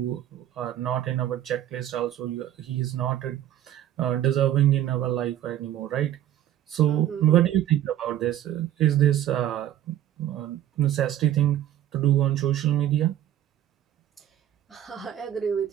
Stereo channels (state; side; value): quieter; left; 11.9 dB